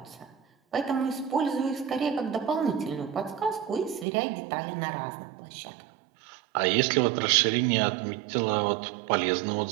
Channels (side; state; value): left; drops out; at 4.0 s